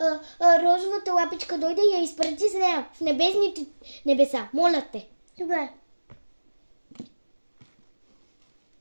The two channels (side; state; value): both; inverted; correlation -1.00